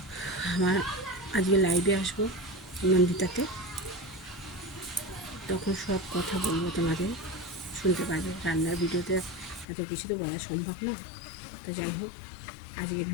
আমার আজকে লাইভে আসবো নন্দিতাতে, তখন সব কথা বলবো, তোমাদের শুনতে পারবে। রান্নার ভিডিওতে এত কিছু তো বলা সম্ভব না। তো যাই হোক, আজকের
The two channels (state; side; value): drops out; right; at 9.7 s